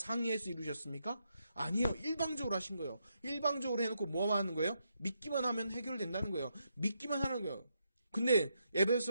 이루셨습니까? 아니요. 일방적으로 하신 거예요. 일방적으로 해놓고 뭐만 하는 거예요? 믿기만 하면 해결된다는 거예요. 믿기만 하는 거예요. 근데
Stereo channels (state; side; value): inverted; both; correlation -0.80